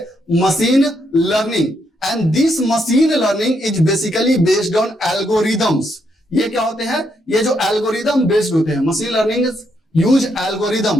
machine learning. And this machine learning is basically based on algorithms. ये क्या होते हैं? ये जो एल्गोरिदम बेस्ड होते हैं, machine learning use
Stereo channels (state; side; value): normal; both; correlation 0.77